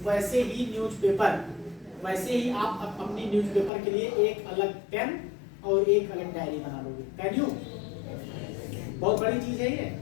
वैसे ही आप अपनी न्यूज़पेपर के लिए एक अलग पेन और एक अलग डायरी बना लोगे। Can you? बहुत बड़ी चीज है ये,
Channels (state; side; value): drops out; right; at 3.7 s